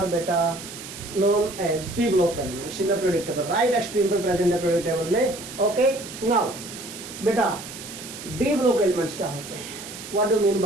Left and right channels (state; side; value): noise; right; hiss, 12 dB below the sound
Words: बेटा known as p block elements in the periodic table. Right extreme पर प्रेजेंट है पीरियोडिक टेबल में। ओके, नाउ बेटा डी ब्लॉक एलिमेंट्स क्या होते हैं? What do mean